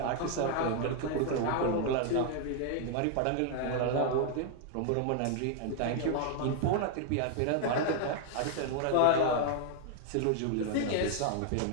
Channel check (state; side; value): different; both; correlation 0.00